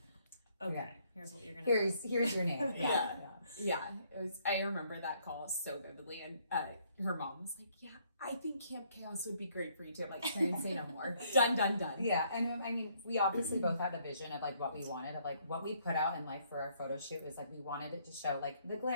okay, here's what you're gonna. Here's your name. Yeah, it was. I remember that call so vividly, and her mom was like, "Yeah, I think Camp Chaos would be great for you too." I'm like, trying to say no more. Done. Yeah, and I mean, we obviously both had a vision of like what we wanted, of like what we put out in life for our photo shoot was like we wanted it to show like the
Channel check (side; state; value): both; inverted; correlation -0.67